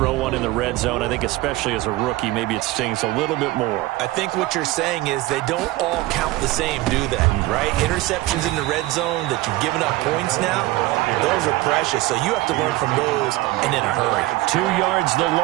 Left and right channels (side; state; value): left; quieter; 18.6 dB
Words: one in the red zone, I think especially as a rookie, maybe it stings a little bit more. I think what you're saying is they don't all count the same, do they? Right? Interceptions in the red zone that you've given up points now, those are precious. So you have to learn from those and in a hurry. 2 yards the